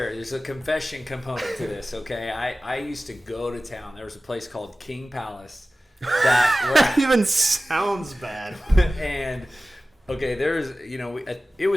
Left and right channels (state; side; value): normal; both; correlation 0.96